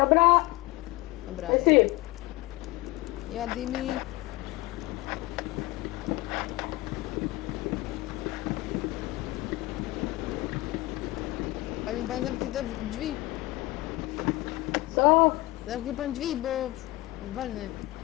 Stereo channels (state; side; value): quieter; right; 19.9 dB